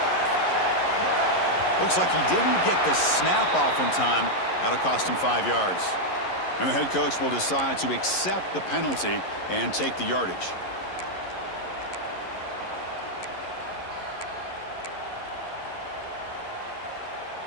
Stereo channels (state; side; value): late; right; 11 ms